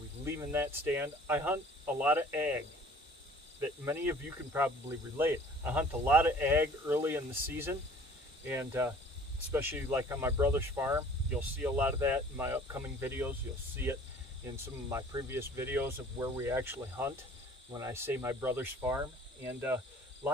leaving that stand? I hunt a lot of ag that many of you can probably relate. I hunt a lot of ag early in the season, and especially like on my brother's farm. You'll see a lot of that in my upcoming videos. You'll see it in some of my previous videos of where we actually hunt when I say my brother's farm. And a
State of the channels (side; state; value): both; normal; correlation 0.51